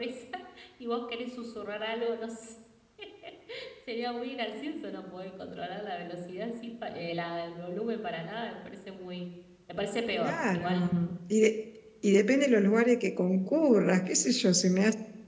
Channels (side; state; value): both; identical; correlation 1.00